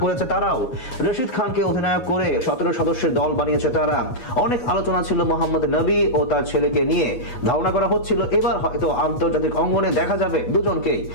করেছে তারাও। রশিদ খানকে অধিনায়ক করে 17 সদস্যের দল বানিয়েছে তারা। অনেক আলোচনা ছিল মোহাম্মদ নবী ও তার ছেলেকে নিয়ে। ধারণা করা হচ্ছিল এবার হয়তো আন্তর্জাতিক অঙ্গনে দেখা যাবে দুজনকেই।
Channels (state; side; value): late; right; 8.1 ms